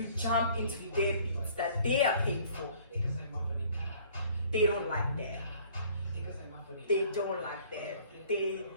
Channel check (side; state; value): both; inverted; correlation -0.56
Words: jump into their beats that they are paying for. They don't like that. They don't like that.